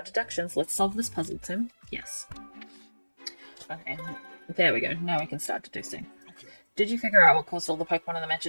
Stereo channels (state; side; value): inverted; both; correlation -1.00